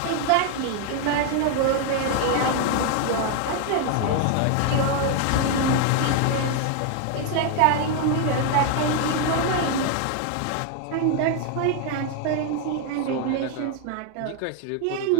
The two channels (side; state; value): both; different; correlation 0.00